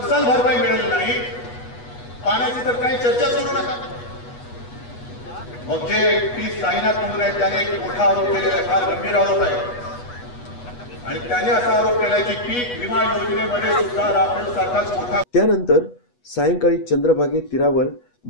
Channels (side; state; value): right; late; 8.2 ms